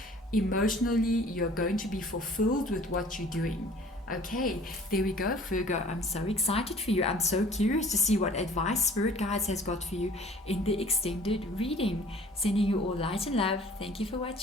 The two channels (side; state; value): both; normal; correlation 0.51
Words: emotionally, you're going to be fulfilled with what you're doing. Okay, there we go, Virgo. I'm so excited for you. I'm so curious to see what advice Spirit Guides has got for you in the extended reading. Sending you all light and love. Thank you for